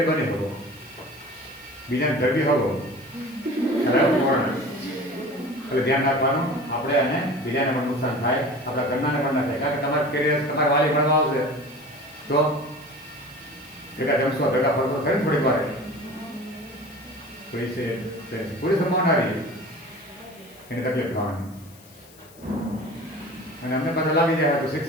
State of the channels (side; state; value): left; noise; hiss, 24 dB below the sound